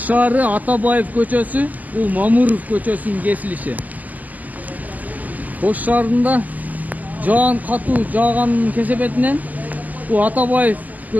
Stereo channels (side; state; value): left; late; 0.080 ms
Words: Атабаев көчөсү, бул Мамуров көчөсүнүн кесилиши. Ош шаарында жаан катуу жааганын кесепетинен бул Атабаев